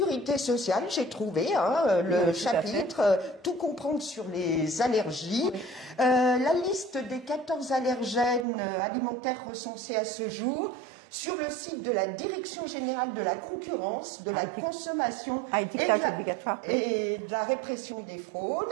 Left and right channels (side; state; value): left; drops out; at 8.5 s